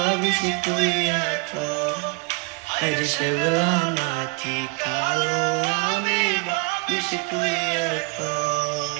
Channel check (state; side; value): quieter; left; 28.4 dB